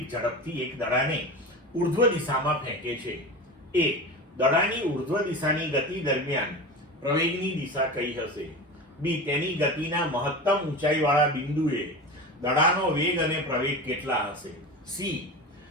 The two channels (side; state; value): both; normal; correlation 0.29